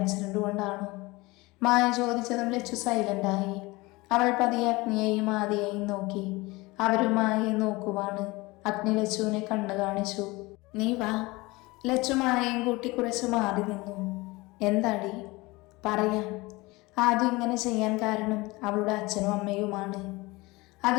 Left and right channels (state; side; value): quieter; right; 22.5 dB